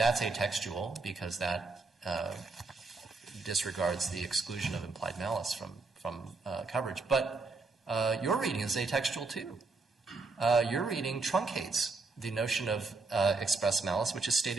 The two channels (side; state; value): left; quieter; 3.9 dB